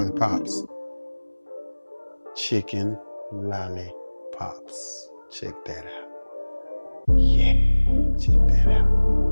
Chicken lollipops. Check that out. Yeah, check that out.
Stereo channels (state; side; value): inverted; both; correlation -1.00